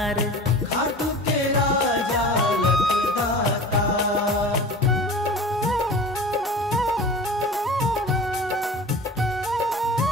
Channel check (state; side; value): normal; both; correlation 0.37